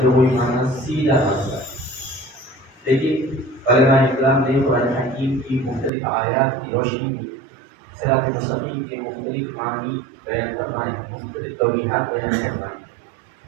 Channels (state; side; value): drops out; left; at 5.9 s